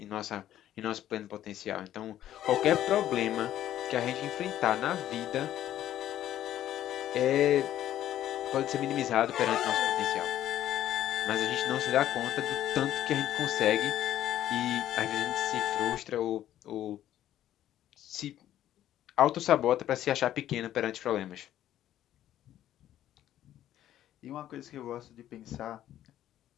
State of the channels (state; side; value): quieter; right; 12.2 dB